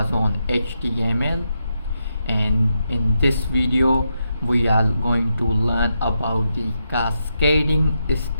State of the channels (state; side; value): inverted; both; correlation -0.84